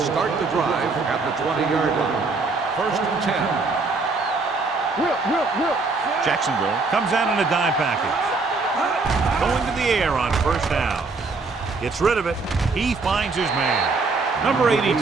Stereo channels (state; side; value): quieter; left; 3.9 dB